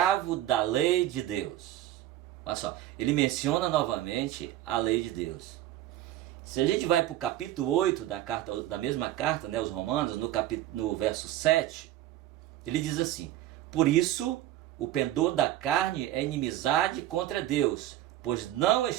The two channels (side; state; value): left; quieter; 13.7 dB